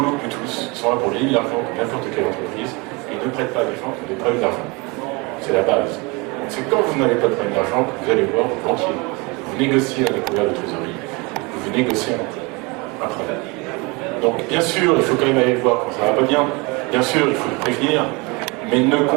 que tous. Ils sont là pour gagner de l'argent comme n'importe quelle entreprise. Et ils ne prêtent pas à des gens qui ont des problèmes d'argent. C'est la base. C'est quand vous n'avez pas de problème d'argent que vous allez voir vos banquiers. Vous négociez un découvert de trésorerie. Vous négociez un prêt. Donc bien sûr, il faut quand même aller voir quand ça va pas bien. Bien sûr, il faut le prévenir. Mais ne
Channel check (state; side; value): quieter; left; 27.4 dB